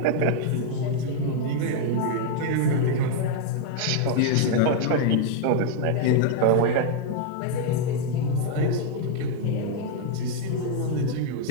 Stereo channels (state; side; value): different; both; correlation 0.00